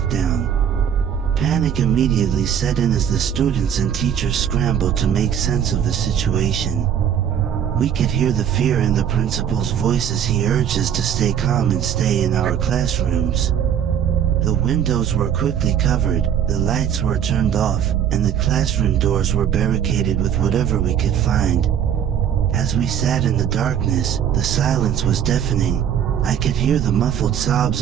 Panic immediately set in as the students and teachers scrambled to make sense of the situation. We could hear the fear in the principal's voice as he urged us to stay calm and stay in our classrooms. The windows were quickly covered, the lights were turned off, and the classroom doors were barricaded with whatever we could find. As we sat in the darkness, the silence was deafening. I could hear the muffled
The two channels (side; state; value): left; quieter; 9.0 dB